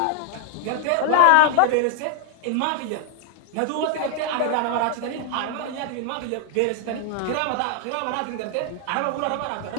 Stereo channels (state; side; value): different; both; correlation -0.01